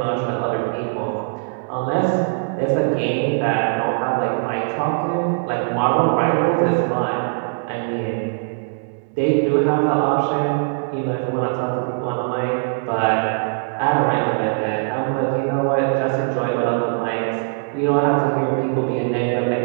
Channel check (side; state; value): left; silent; 65 dB below the other